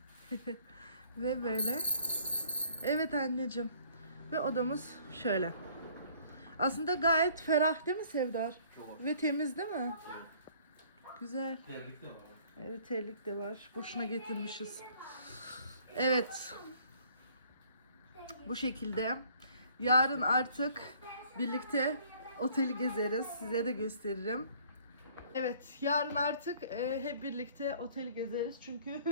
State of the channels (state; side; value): inverted; both; correlation -0.57